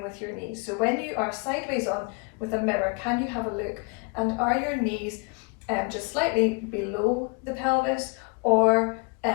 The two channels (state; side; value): quieter; right; 32.7 dB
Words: with your knees. So when you are sideways on with a mirror, can you have a look, and are your knees just slightly below the pelvis or